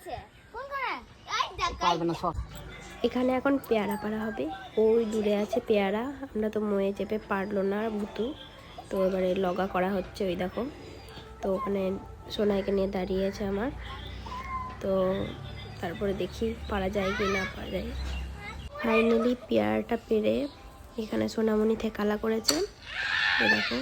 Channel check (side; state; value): both; identical; correlation 1.00